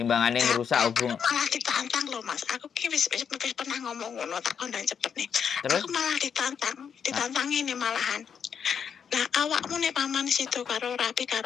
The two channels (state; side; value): quieter; right; 7.3 dB